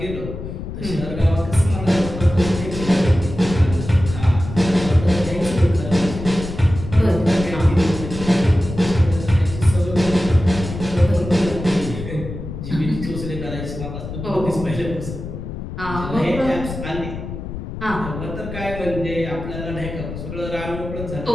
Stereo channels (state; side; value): noise; left; rumble, 8 dB below the sound